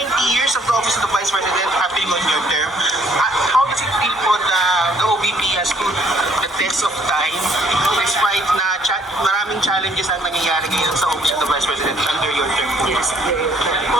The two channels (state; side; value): normal; both; correlation 0.63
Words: years of the office of the Vice President happening on your term. How does it feel po na the OVP has stood the test of time despite na maraming challenges ang nangyayari ngayon sa office of the Vice President under your term? Yes.